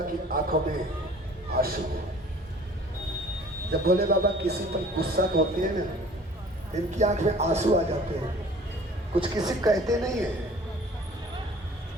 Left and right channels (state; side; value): normal; both; correlation 0.49